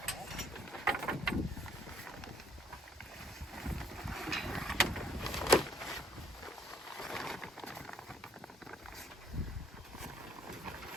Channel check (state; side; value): normal; both; correlation 0.65